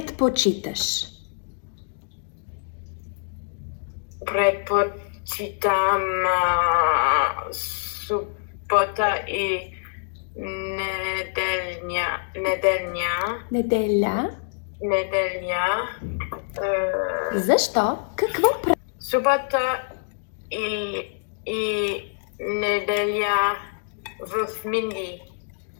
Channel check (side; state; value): right; silent; digital silence